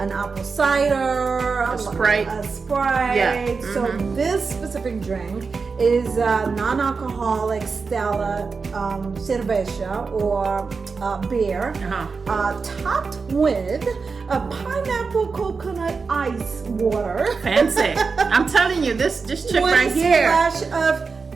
apple cider, a Sprite. Yeah. So this specific drink is non-alcoholic Stella cerveja or beer, topped with a pineapple coconut ice water. Fancy. I'm telling you, this chick right here. With a splash of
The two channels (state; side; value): quieter; left; 4.8 dB